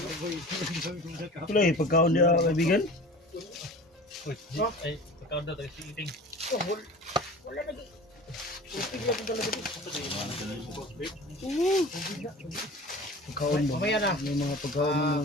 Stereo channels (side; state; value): both; normal; correlation 0.39